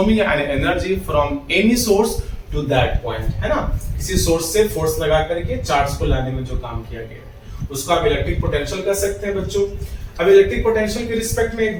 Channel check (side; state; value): both; identical; correlation 1.00